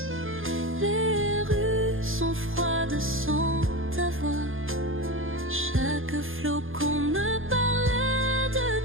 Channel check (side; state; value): left; late; 0.59 ms